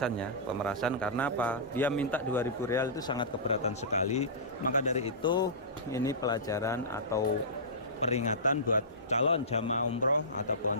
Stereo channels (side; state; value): both; normal; correlation -0.20